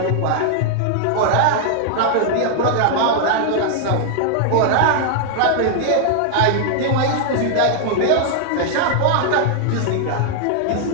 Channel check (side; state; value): both; different; correlation -0.01